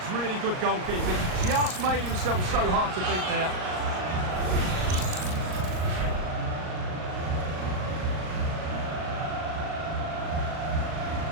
really good goalkeeping. Just made himself so hard to beat there.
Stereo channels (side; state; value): left; late; 38 ms